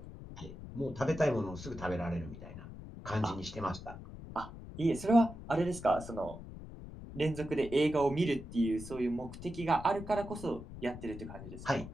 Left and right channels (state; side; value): noise; left; rumble, 12 dB below the sound